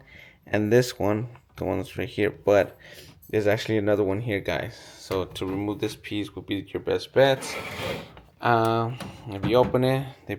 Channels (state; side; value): identical; both; correlation 1.00